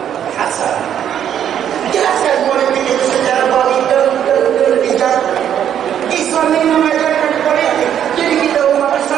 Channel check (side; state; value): left; quieter; 9.7 dB